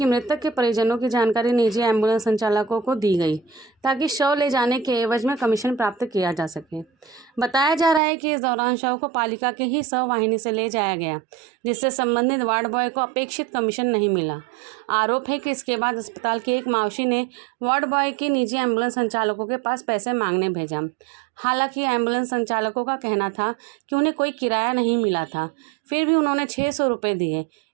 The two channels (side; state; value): left; drops out; at 8.0 s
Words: मृतक के परिजनों की जानकारी निजी एम्बुलेंस संचालकों को दी गई ताकि शव ले जाने के एवज में कमीशन प्राप्त किया जा सके। बताया जा रहा है कि इस दौरान शव को पालिका के ही शव वाहिनी से ले जाया गया, जिससे संबंधित वार्ड बॉय को अपेक्षित कमीशन नहीं मिला। आरोप है कि इसके बाद अस्पताल की एक मावशी ने वार्ड बॉय की निजी एम्बुलेंस संचालकों के पास पैसे मांगने भेजा। हालांकि एम्बुलेंस संचालकों का कहना था कि उन्हें कोई किराया नहीं मिला था, फिर भी उन्होंने 600 रुपये दिए।